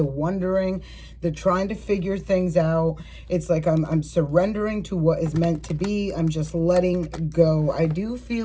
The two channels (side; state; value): both; identical; correlation 1.00